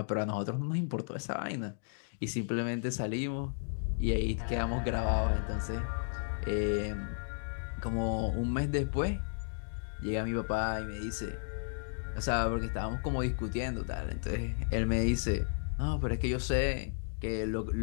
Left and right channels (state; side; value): silent; right; digital silence